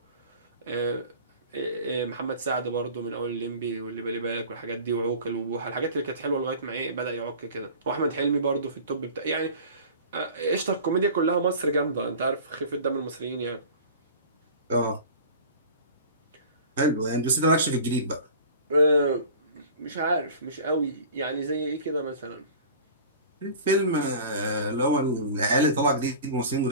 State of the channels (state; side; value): inverted; both; correlation -0.39